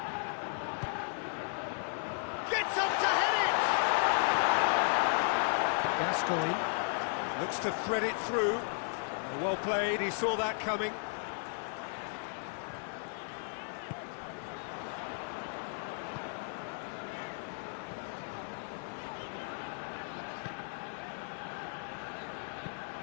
Gets up to head it! Gascoigne. Looks to thread it through. Well played, he saw that coming.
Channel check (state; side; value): silent; right; 55 dB below the other